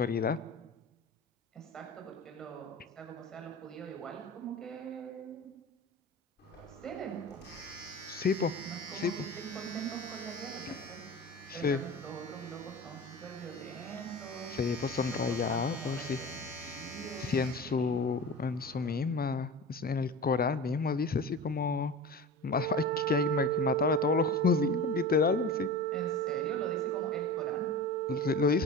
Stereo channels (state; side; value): normal; both; correlation 0.33